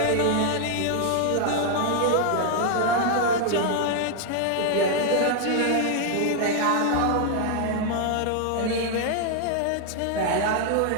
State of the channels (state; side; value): different; both; correlation 0.00